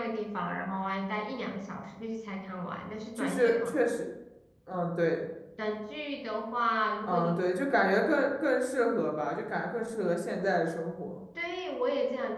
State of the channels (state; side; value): identical; both; correlation 1.00